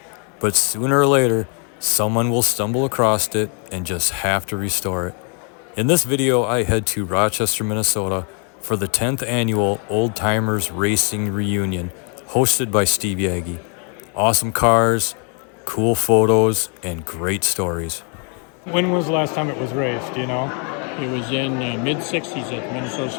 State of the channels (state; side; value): quieter; right; 38.9 dB